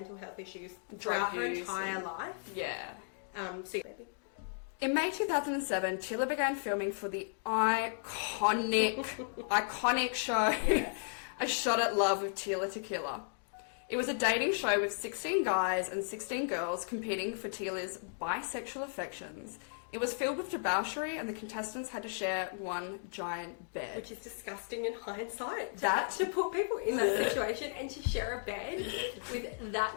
health issues throughout her entire life. Yeah. So baby. In May 2007, Tila began filming for the iconic show A Shot at Love with Tila Tequila. It was a dating show with 16 guys and 16 girls competing for Tila's bisexual affections. It was filled with debauchery and the contestants had to share one giant bed. Which is disgusting in hindsight. To put people in that situation and to share a bed with that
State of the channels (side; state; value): right; silent; digital silence